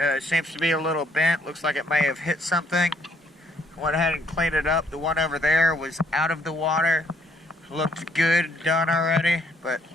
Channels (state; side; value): normal; both; correlation 0.67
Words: seems to be a little bent. Looks like it may have hit something. Went ahead and cleaned it up. The one over there was out of the water. Looked good, done already. But